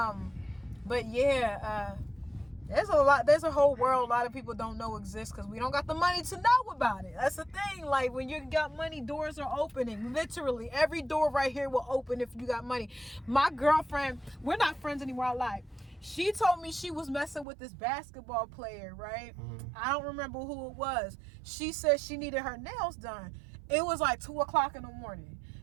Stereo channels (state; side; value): drops out; left; at 17.4 s